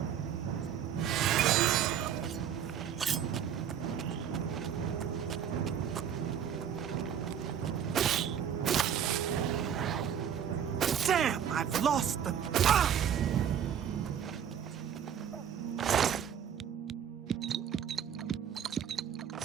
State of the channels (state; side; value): quieter; left; 8.8 dB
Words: Damn, I've lost them. Ah!